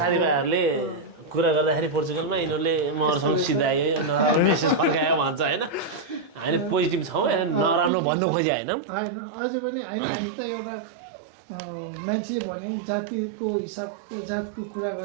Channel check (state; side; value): drops out; left; at 7.9 s